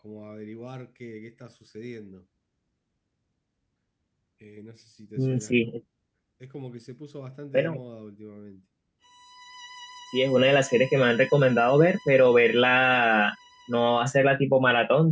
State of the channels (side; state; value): both; identical; correlation 1.00